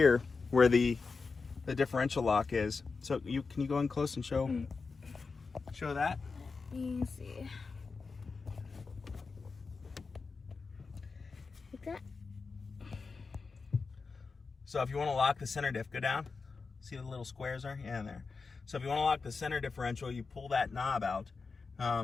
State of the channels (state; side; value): quieter; right; 4.6 dB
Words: where the differential lock is. So can you go in close and show that? Let me see. Like that. So if you want to lock the center diff, go down. See the little squares are? Yeah, in there. So if you want to lock the center differential, you pull that knob out.